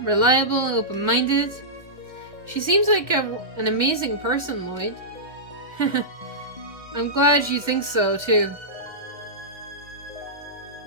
reliable, open-minded. She seems like an amazing person, Lloyd. I'm glad you think so, too.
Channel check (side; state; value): left; late; 1.6 ms